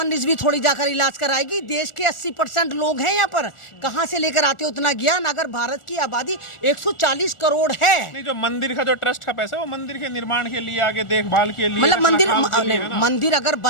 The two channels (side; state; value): right; late; 1.4 ms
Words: रिजवी थोड़ी जाकर इलाज कराएगी। देश के 80% लोग हैं यहाँ पर, कहाँ से लेकर आते हो उतना ज्ञान? अगर भारत की आबादी 140 करोड़ है। नहीं, जो मंदिर का जो ट्रस्ट का पैसा है वो मंदिर के निर्माण के लिए, आगे देखभाल के लिए, मतलब मंदिर मंदिर अगर